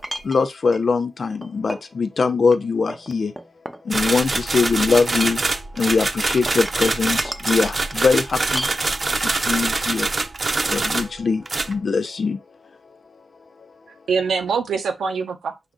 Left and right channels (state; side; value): normal; both; correlation 0.90